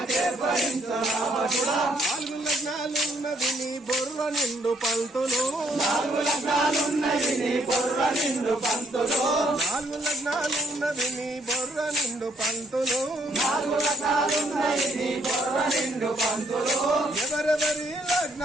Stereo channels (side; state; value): both; normal; correlation 0.68